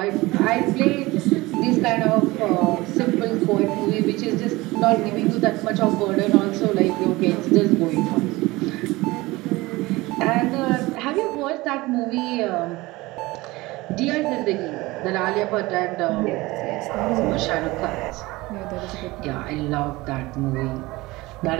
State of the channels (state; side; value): quieter; left; 20.7 dB